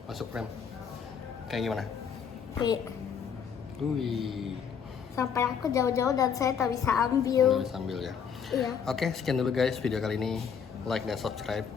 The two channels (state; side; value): quieter; right; 7.1 dB